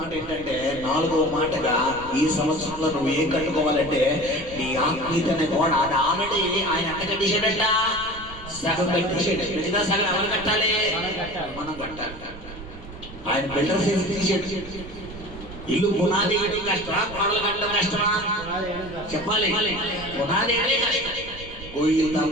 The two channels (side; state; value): right; noise; rumble, 15 dB below the sound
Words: ఏంటంటే, 4వ మాటగా ఈ సంవత్సరంలో నువ్వు ఏం కట్టుకోవాలంటే నీ ఆత్మీయతనే గోడ. అది ఆల్రెడీ ఆయన ఎంత కట్టేశాడంట? సగం పెట్టేసాడు. మిగతా సగం ఎవరు కట్టాలి? మనం కట్టాలి. ఆయన బిల్డర్ చేసి తీసేడు. ఇల్లు పునాది వేయడం కష్టమా, గోడలు కట్టడం కష్టమా? చెప్పాలి. పునాది వేయడం కష్టం. గొయ్యి